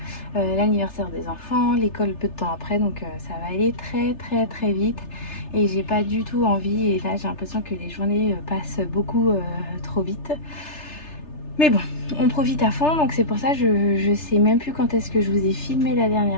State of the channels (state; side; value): late; right; 3.3 ms